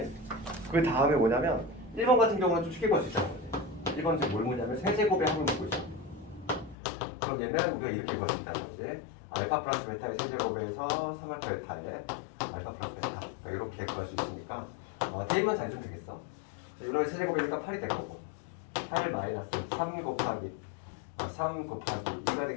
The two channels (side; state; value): right; drops out; at 6.8 s